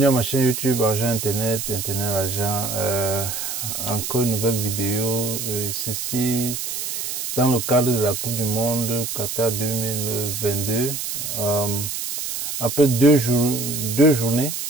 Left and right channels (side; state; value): right; noise; hiss, 4 dB below the sound